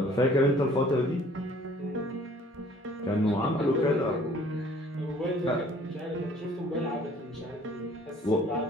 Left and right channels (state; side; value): normal; both; correlation 0.55